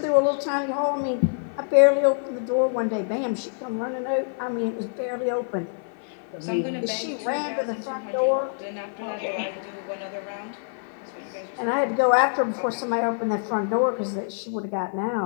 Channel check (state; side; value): silent; right; 56 dB below the other